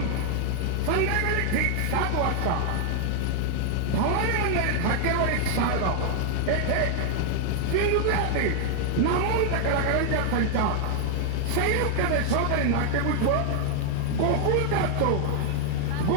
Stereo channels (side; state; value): both; different; correlation 0.00